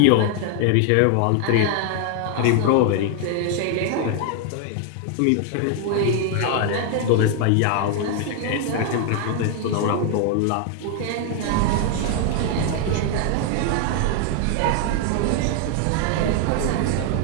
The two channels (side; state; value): both; different; correlation 0.00